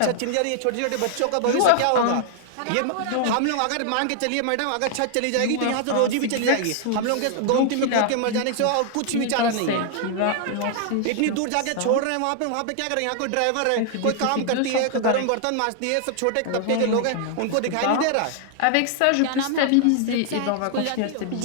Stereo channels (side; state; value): both; different; correlation 0.00